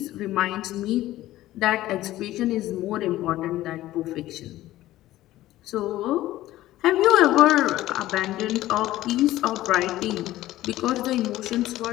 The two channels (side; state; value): right; quieter; 15.3 dB